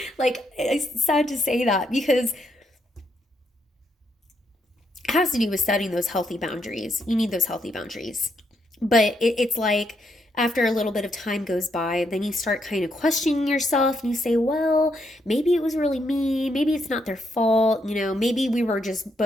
Like, it's sad to say that because it has to do with setting those healthy boundaries. You need those healthy boundaries. But it's like, after a little bit of time goes by, then you start kind of questioning yourself and you say, well, maybe it was really me. Maybe it's not their fault. Maybe we were just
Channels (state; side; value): normal; both; correlation 0.77